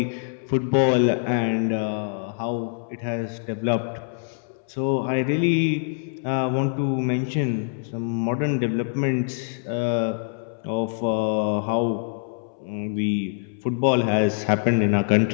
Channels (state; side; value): silent; right; 62 dB below the other